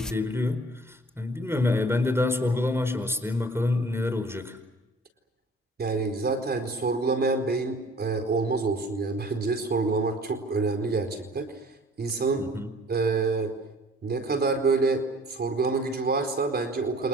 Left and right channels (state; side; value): normal; both; correlation 0.51